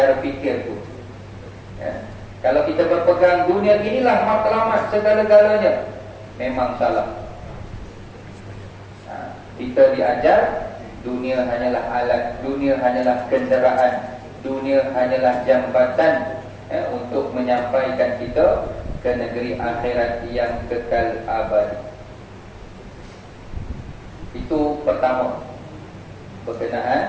fikir tu. Ya. Kalau kita berpegang dunia inilah matlamat segala-galanya, memang salah. Kita diajar dunia hanyalah alat, dunia hanyalah kenderaan, dunia hanyalah jambatan, untuk menyampaikan kita ke negeri akhirat yang kekal abadi. Itu pertama,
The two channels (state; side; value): identical; both; correlation 1.00